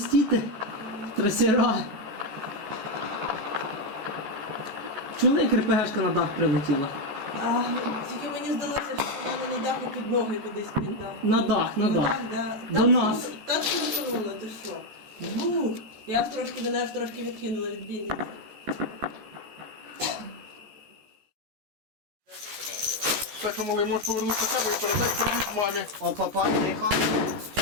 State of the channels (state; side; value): late; left; 14 ms